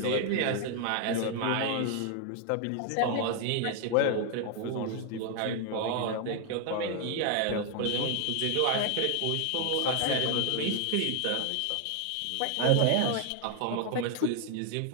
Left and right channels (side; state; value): both; different; correlation 0.00